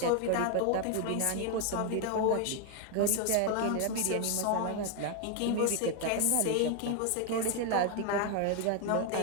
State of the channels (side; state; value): both; different; correlation 0.00